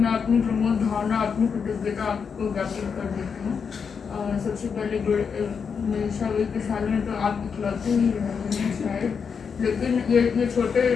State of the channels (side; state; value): right; quieter; 6.2 dB